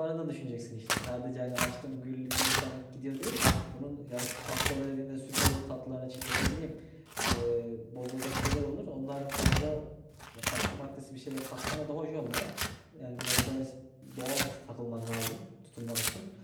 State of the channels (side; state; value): both; identical; correlation 1.00